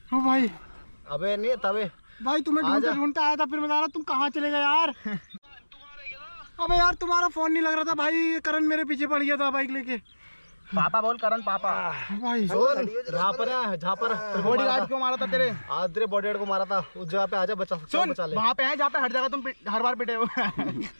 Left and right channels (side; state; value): both; inverted; correlation -1.00